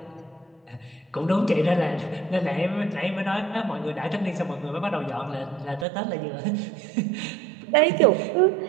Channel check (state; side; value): drops out; left; at 5.9 s